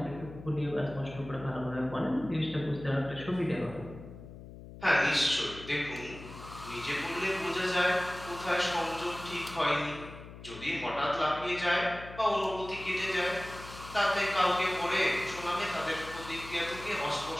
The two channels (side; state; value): left; noise; hum, 15 dB below the sound